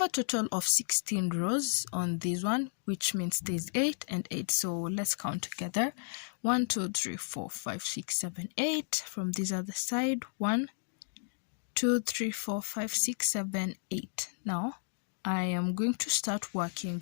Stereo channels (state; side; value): silent; right; digital silence